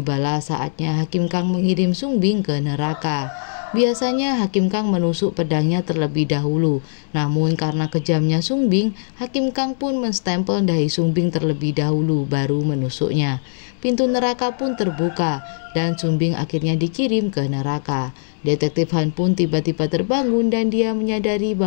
saatnya Hakim Kang mengirim Sung Bing ke neraka. Biasanya Hakim Kang menusuk pedangnya terlebih dahulu, namun karena kejamnya Sung Bing, Hakim Kang pun menstempel dahi Sung Bing terlebih dahulu baru menusuknya. Pintu neraka pun terbuka dan Sung Bing akhirnya dikirim ke neraka. Detektif Han pun tiba-tiba terbangun dan dia menyadari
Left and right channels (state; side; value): silent; right; digital silence